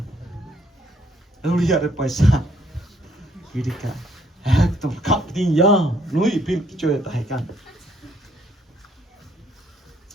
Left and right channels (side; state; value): both; normal; correlation 0.67